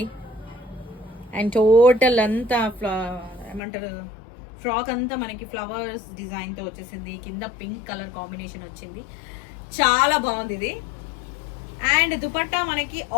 అండ్ టోటల్ అంతా ఏమంటారు, ఫ్రాక్ అంతా మనకి ఫ్లవర్స్ డిజైన్ తో వచ్చేసింది. కింద పింక్ కలర్ కాంబినేషన్ వచ్చింది, చాలా బాగుంది ఇది. అండ్ దుపట్టా మనకి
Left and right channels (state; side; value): drops out; right; at 3.6 s